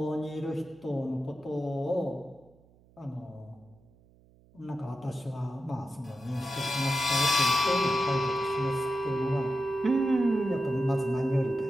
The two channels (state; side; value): noise; right; hum, 29 dB below the sound